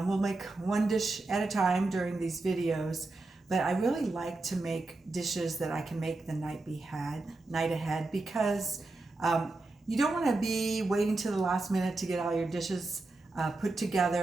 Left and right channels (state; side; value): quieter; left; 3.2 dB